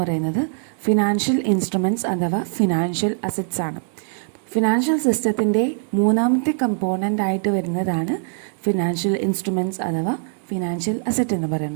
പറയുന്നത് ഫിനാൻഷ്യൽ ഇൻസ്ട്രുമെൻറ്റ്സ് അഥവാ ഫിനാൻഷ്യൽ അസറ്റ്സ് ആണ്. ഫിനാൻഷ്യൽ സിസ്റ്റത്തിൻ്റെ മൂന്നാമത്തെ കമ്പോണൻ്റ് ആയിട്ട് വരുന്നതാണ് ഫിനാൻഷ്യൽ ഇൻസ്ട്രുമെൻറ്റ്സ് അഥവാ ഫിനാൻഷ്യൽ അസറ്റ് എന്ന്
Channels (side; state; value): left; silent; 64 dB below the other